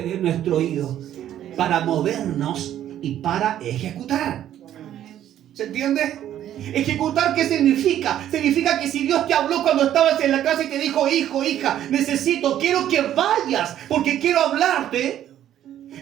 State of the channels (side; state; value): left; quieter; 11.4 dB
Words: nuestro oído para movernos y para ejecutar? ¿Se entiende? Ejecutar, ¿qué significa? Significa que si Dios te habló cuando estabas en la casa y te dijo, hijo, hija, quiero que vayas porque quiero hablarte.